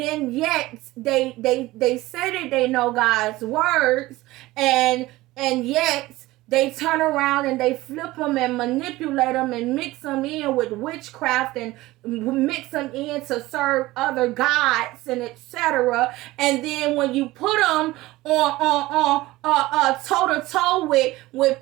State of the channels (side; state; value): left; quieter; 18.5 dB